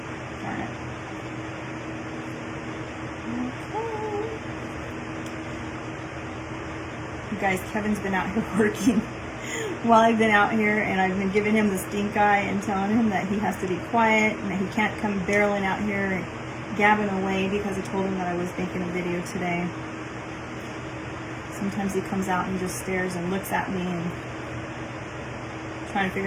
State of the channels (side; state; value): both; identical; correlation 1.00